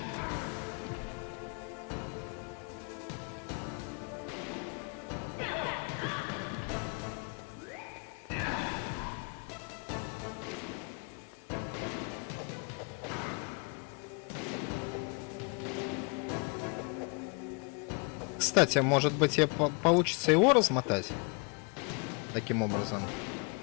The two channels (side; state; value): right; quieter; 34.6 dB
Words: Кстати, может быть, получится его размотать? Таким образом.